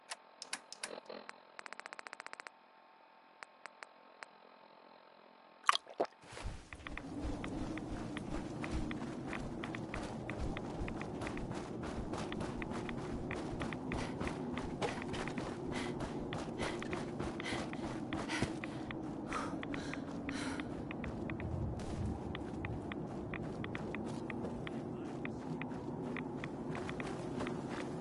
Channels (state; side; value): identical; both; correlation 1.00